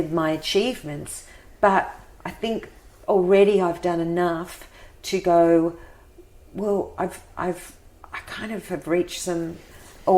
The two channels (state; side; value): identical; both; correlation 1.00